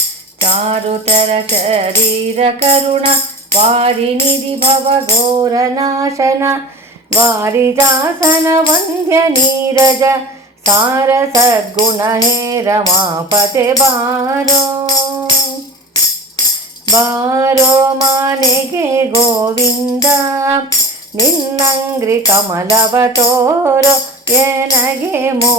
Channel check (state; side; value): normal; both; correlation 0.33